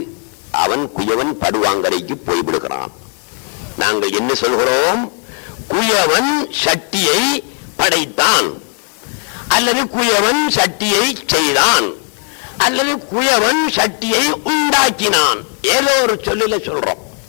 அவன் குயவன் படுவாங்கரைக்கு போய்விடுகிறான். நாங்கள் என்ன சொல்கிறோம்? குயவன் சட்டியை படைத்தான், அல்லது குயவன் சட்டியை செய்தான், அல்லது குயவன் சட்டியை உண்டாக்கினான். ஏதோ ஒரு சொல்லில சொல்றோம்.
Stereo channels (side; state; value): right; quieter; 39.7 dB